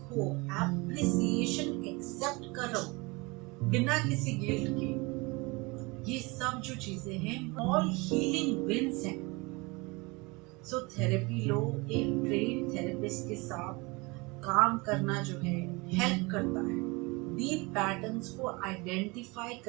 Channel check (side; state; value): left; quieter; 25.9 dB